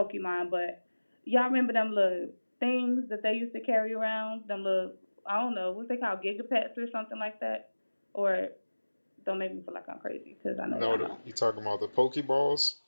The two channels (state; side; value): inverted; both; correlation -1.00